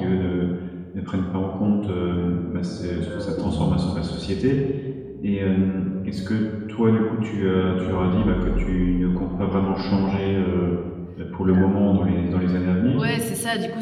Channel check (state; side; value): identical; both; correlation 1.00